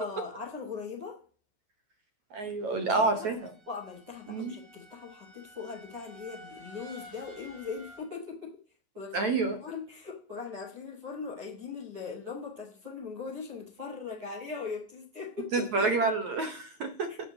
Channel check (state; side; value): late; left; 9.4 ms